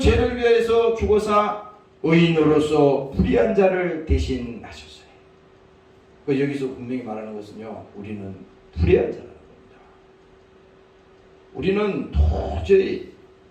위해서 죽어서 의인으로서 불의한 자를 대신하셨어요. 여기서 분명히 말하는 것은요, 우리는 불의한 자라는 겁니다. 우리는 도저히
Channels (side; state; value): both; identical; correlation 1.00